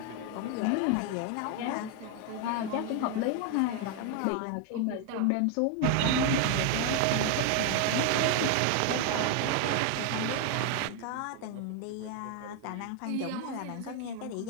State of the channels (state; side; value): different; both; correlation 0.01